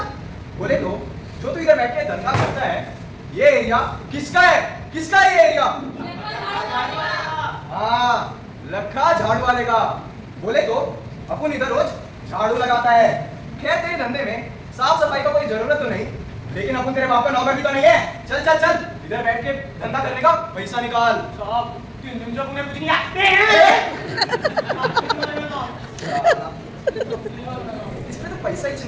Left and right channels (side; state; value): both; identical; correlation 1.00